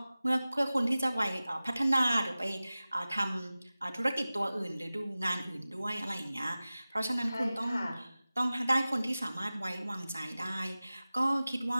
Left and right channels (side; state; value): both; inverted; correlation -0.97